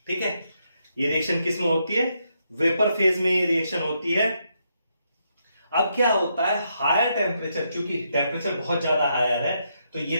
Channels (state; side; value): inverted; both; correlation -0.79